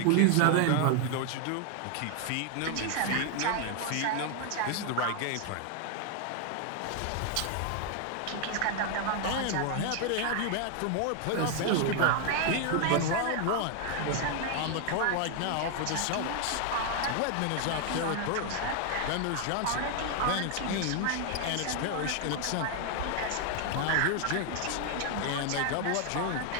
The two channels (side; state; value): both; different; correlation 0.00